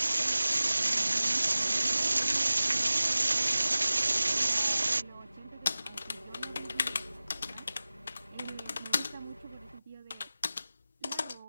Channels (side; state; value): both; inverted; correlation -0.97